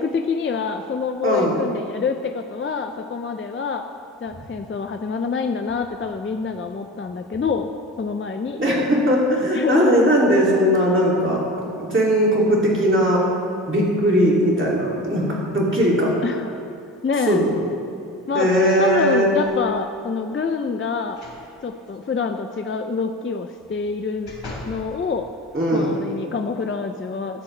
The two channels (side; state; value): both; normal; correlation 0.33